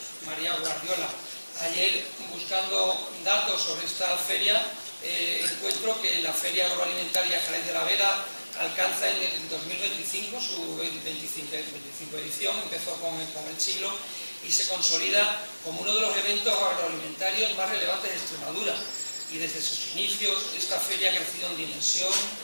María Guardiola. Ayer, buscando datos sobre esta feria, encuentro que la Feria Agroalimentaria Jerez de la Vera alcanza en el 2025 su 25 edición, empezó con el siglo y se consolida como uno de los eventos agroalimentarios más relevantes de Extremadura. Y desde sus inicios, esta feria ha crecido en dimensión,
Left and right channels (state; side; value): inverted; both; correlation -1.00